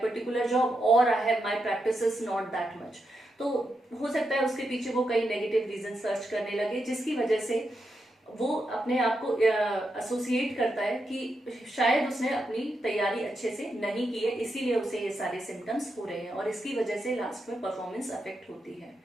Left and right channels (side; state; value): both; normal; correlation 0.85